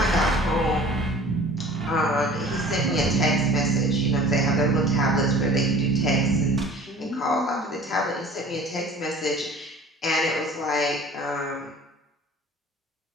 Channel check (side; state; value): both; normal; correlation 0.46